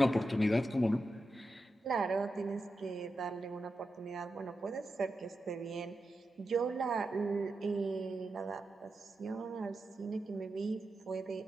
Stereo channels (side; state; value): both; normal; correlation 0.89